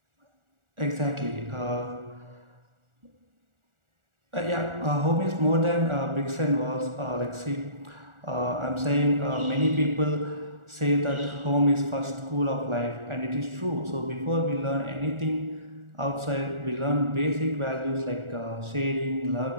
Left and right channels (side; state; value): left; late; 1.4 ms